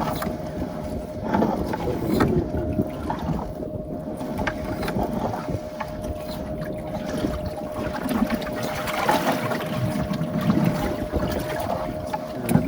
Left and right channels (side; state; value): both; identical; correlation 1.00